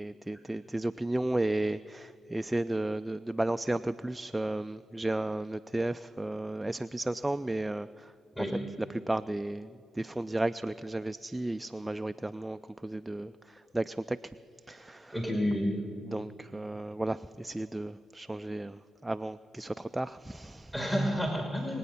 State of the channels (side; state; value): both; normal; correlation 0.97